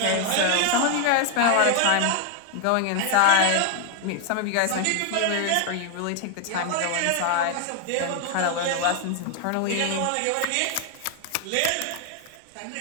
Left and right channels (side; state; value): both; different; correlation 0.00